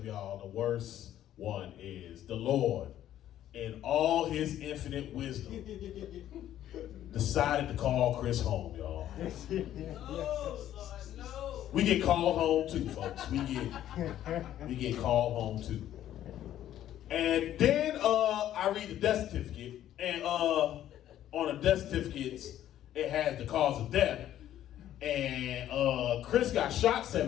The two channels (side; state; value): right; quieter; 12.0 dB